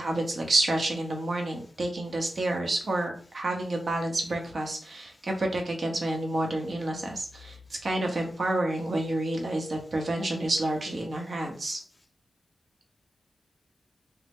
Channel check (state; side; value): normal; both; correlation 0.91